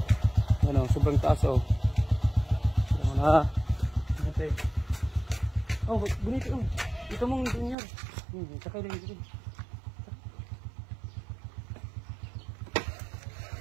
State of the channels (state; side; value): drops out; left; at 7.8 s